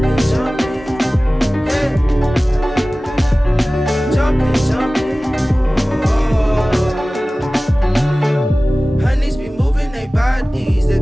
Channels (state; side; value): normal; both; correlation 0.97